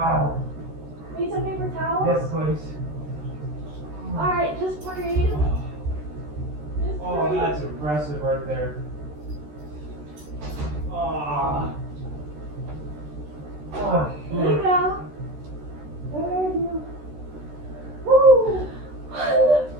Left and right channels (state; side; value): late; left; 13 ms